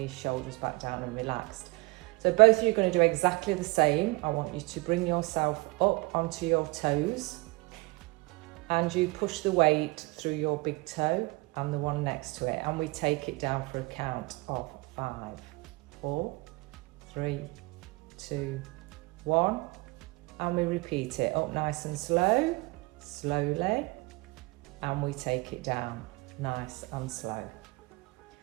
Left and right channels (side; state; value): left; quieter; 25.0 dB